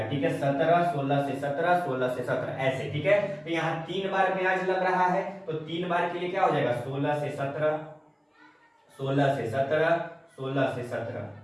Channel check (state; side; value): identical; both; correlation 1.00